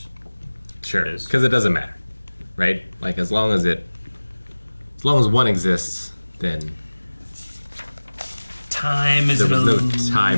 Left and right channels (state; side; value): inverted; both; correlation -1.00